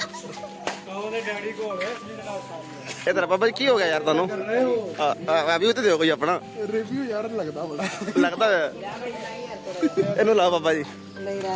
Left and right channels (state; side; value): identical; both; correlation 1.00